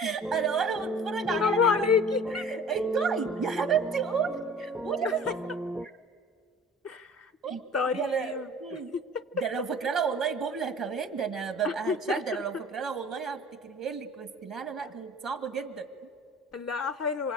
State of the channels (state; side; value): normal; both; correlation 0.45